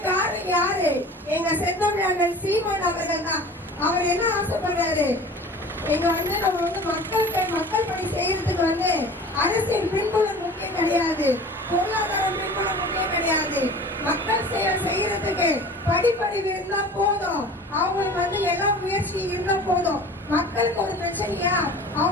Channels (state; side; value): normal; both; correlation 0.41